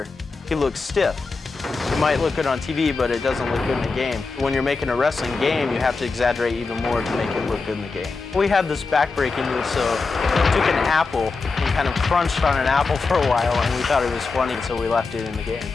he looks stiff. It might look good on TV, but it doesn't look good in the game. When you're making a wrestling game, you have to exaggerate even more to make it look good in the game. We had this back-breaking move, so we took an apple and kind of crunched on an apple for a while, and we thought it was funny, so we left it in the game.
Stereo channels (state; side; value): quieter; right; 4.2 dB